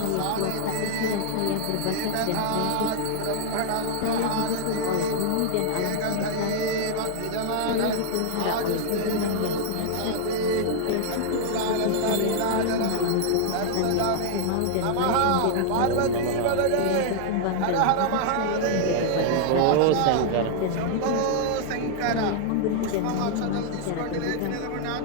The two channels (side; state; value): both; different; correlation 0.00